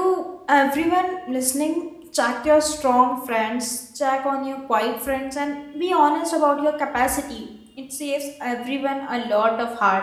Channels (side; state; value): both; identical; correlation 1.00